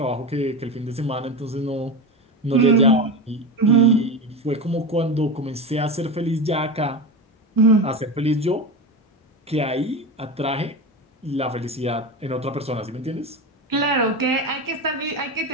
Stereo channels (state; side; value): normal; both; correlation 0.22